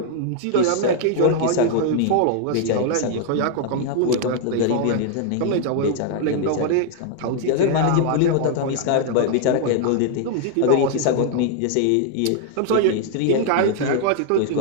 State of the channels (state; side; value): different; both; correlation 0.00